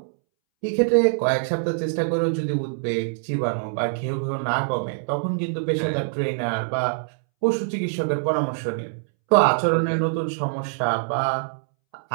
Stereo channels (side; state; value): left; silent; 63 dB below the other